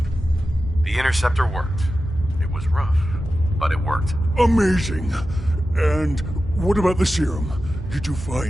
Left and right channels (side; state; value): both; normal; correlation 0.93